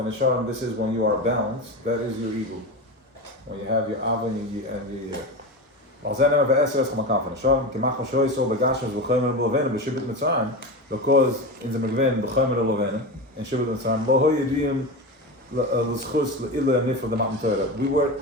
is when you are balanced. That is your ego. When you have your Ava and your because in the Megven b'chomer lovena and Shibud Mitzrayim lo hoyediyim l'schus l'ila nifra the Matan Torah.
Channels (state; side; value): normal; both; correlation 0.22